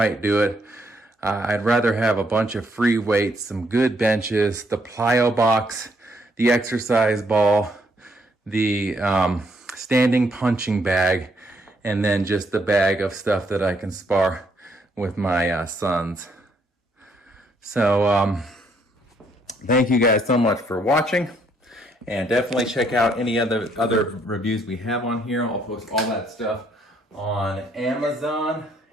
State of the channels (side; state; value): both; normal; correlation 0.71